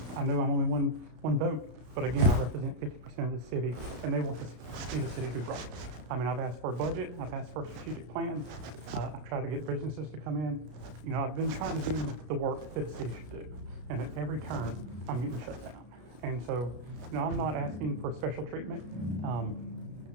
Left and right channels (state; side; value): late; left; 33 ms